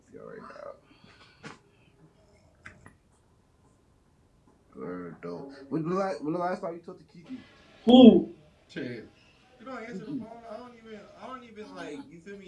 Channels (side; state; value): both; identical; correlation 1.00